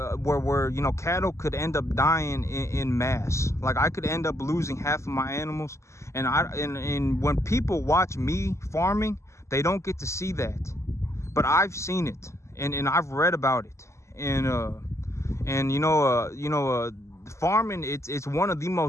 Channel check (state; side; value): late; right; 0.14 ms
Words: cattle could end up dying in mass. Like I could end up losing half of my animals, and when people watch me farming, they don't get to see that, but I've seen it, and I've read about it, and farming, it's one of the